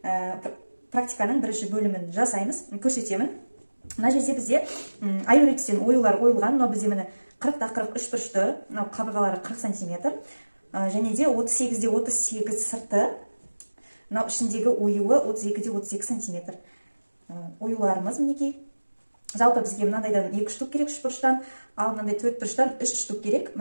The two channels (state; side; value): inverted; both; correlation -1.00